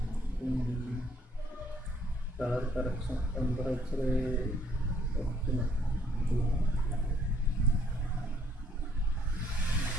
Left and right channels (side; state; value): both; normal; correlation 0.65